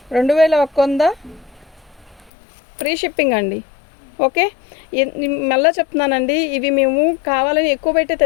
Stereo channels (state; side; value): drops out; right; at 2.3 s